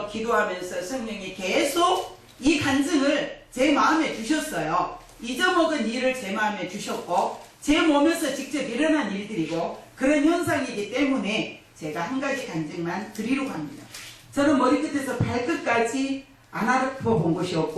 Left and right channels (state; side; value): identical; both; correlation 1.00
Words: 기도하면서 성령이 계속 이 간증을 제 마음에 주셨어요. 잊어먹은 일을 제 마음에 주셨고 제 몸에서 직접 일어난 일들이고 그런 현상이기 때문에 제가 한 가지 간증만 드리려고 합니다. 저는 머리끝에서 발끝까지 안 아파본 곳이